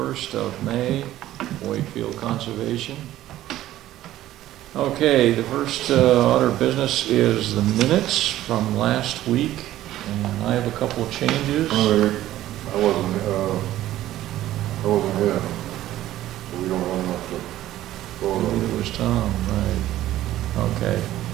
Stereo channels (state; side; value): quieter; left; 14.0 dB